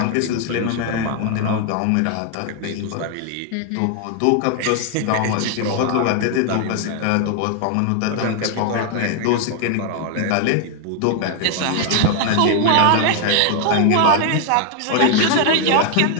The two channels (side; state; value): both; different; correlation 0.00